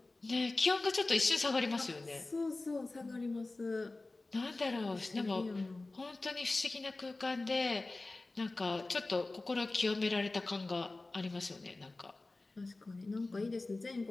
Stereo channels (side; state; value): right; quieter; 3.1 dB